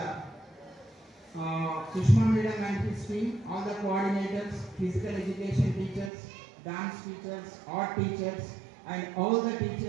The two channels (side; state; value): left; drops out; at 6.1 s